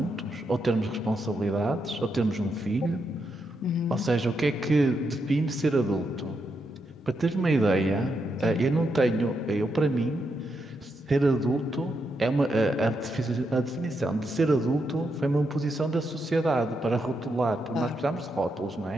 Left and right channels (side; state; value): both; normal; correlation 0.82